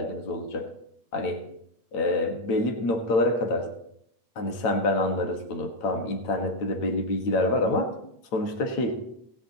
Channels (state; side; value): late; right; 8.9 ms